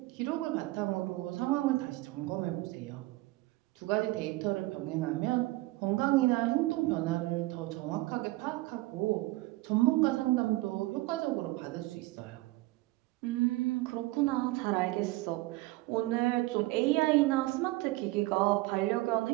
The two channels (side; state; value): left; quieter; 20.0 dB